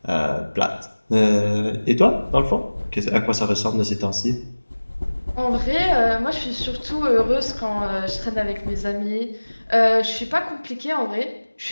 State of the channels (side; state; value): both; inverted; correlation -1.00